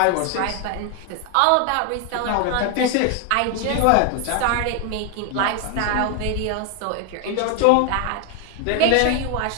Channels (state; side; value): different; both; correlation 0.01